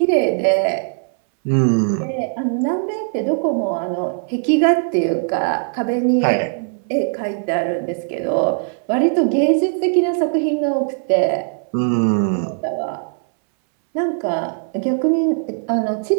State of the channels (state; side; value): silent; left; 61 dB below the other